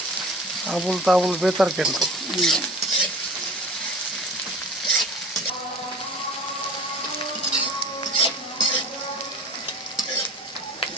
আবুল তাবুল বেতার কেন?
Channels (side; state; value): both; normal; correlation 0.41